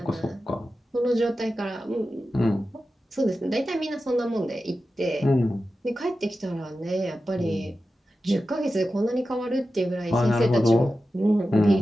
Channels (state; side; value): normal; both; correlation 0.92